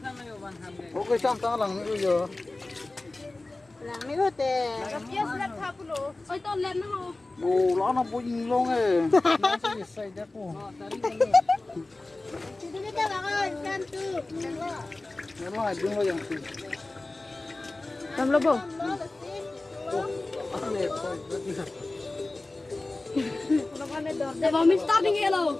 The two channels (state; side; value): quieter; right; 3.0 dB